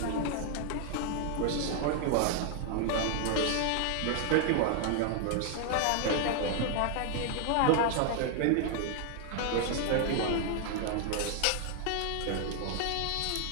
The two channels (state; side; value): different; both; correlation 0.00